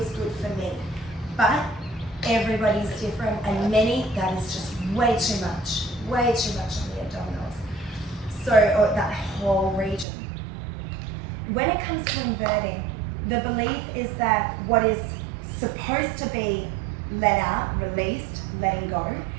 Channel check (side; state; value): left; drops out; at 10.1 s